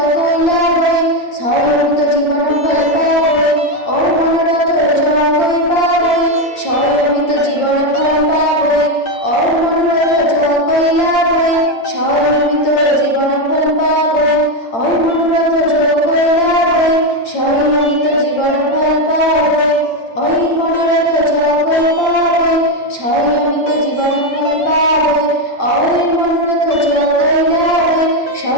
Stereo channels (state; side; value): late; right; 8.8 ms